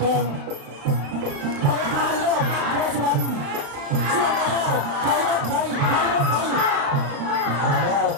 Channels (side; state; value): left; late; 35 ms